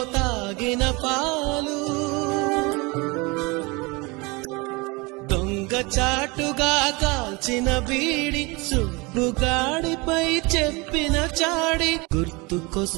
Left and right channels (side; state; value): left; quieter; 26.3 dB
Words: తాగిన పాలు, దొంగ చాటుగా కాల్చిన బీడి, సుబ్బుగాడిపై చెప్పిన చాడి